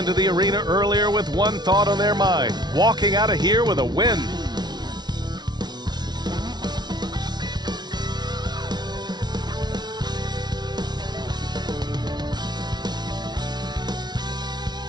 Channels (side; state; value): left; late; 0.20 ms